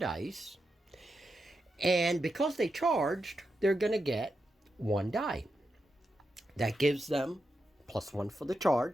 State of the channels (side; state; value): both; normal; correlation 0.87